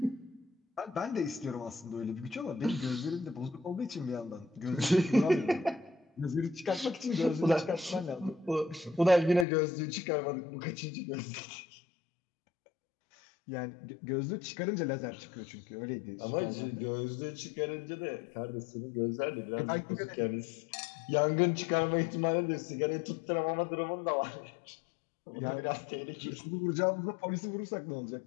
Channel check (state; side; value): drops out; right; at 9.5 s